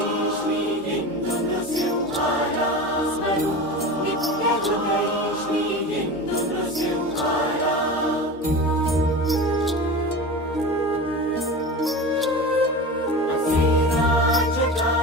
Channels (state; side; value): normal; both; correlation 0.29